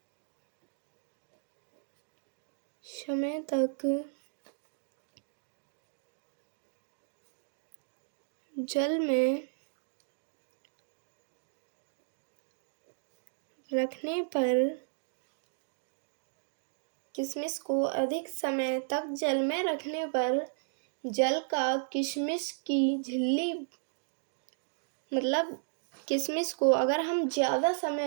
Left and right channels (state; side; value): silent; left; digital silence